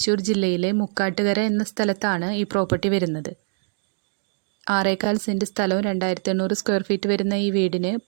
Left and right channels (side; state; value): left; silent; digital silence